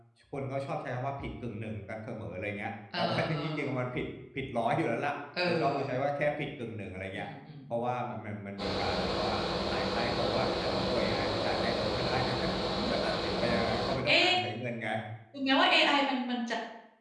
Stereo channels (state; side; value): identical; both; correlation 1.00